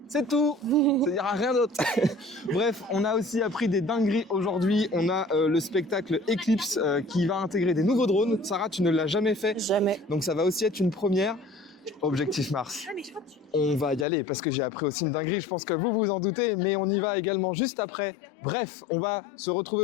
c'est tout, il n'y aura rien d'autre. Bref, on a aussi appris des dingueries aujourd'hui. On a le spectacle Eclipse qui va intégrer des nouveaux drones. Sarah, tu ne l'as jamais fait. Jamais. Donc ça va aussi être une première. Objectif Mars. On va y aller parce que j'ai appris aussi une dinguerie, je pense que vous vous en doutez, mais on y va également juste après. Bref, on va se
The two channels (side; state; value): right; drops out; at 14.1 s